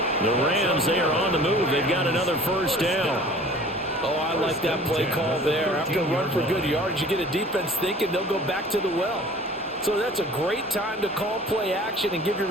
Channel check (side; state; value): both; normal; correlation 0.46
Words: The Rams, they are on the move. They've got another 1st down. Oh, I like that play call there. After a run for good yards, you get a defense thinking they'll go back to the well. So that's a great time to call play action and give your